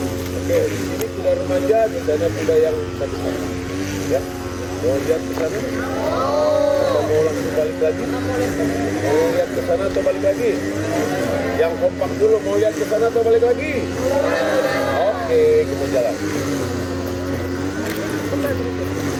Oke, di sini kuda remaja, di sana kuda yang satu-satu. Ya, mau lihat ke sana? Atau mau langsung balik lagi? Mau lihat ke sana atau balik lagi? Yang kompak dulu, mau lihat ke sana atau balik lagi? Oke, kita jalan.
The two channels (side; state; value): both; identical; correlation 1.00